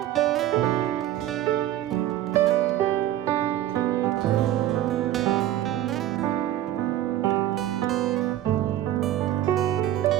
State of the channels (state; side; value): quieter; left; 13.1 dB